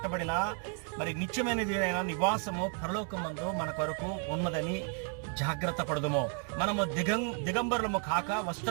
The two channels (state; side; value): quieter; left; 38.5 dB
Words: మరి నిత్యమైనది అయిన నివాసము పరలోకమందు మన కొరకు ఉన్నదని జాగ్రత్త పడదుము. మనము దిగంబరులము కాక